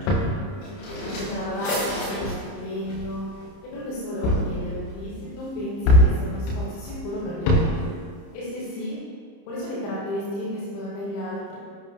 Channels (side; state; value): right; late; 30 ms